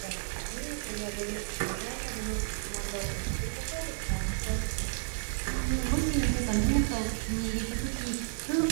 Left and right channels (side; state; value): left; silent; 56 dB below the other